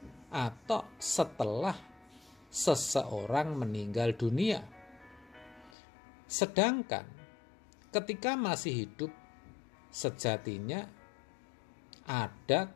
atau setelah seseorang meninggal dunia. Sedangkan ketika masih hidup, sejatinya ada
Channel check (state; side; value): drops out; right; at 5.7 s